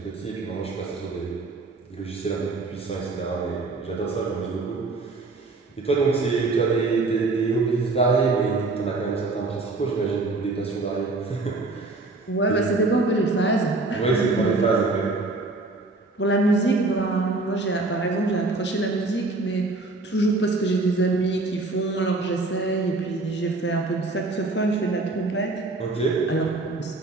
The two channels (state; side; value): quieter; left; 3.3 dB